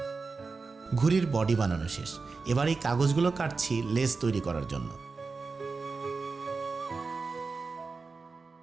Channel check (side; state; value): left; quieter; 4.3 dB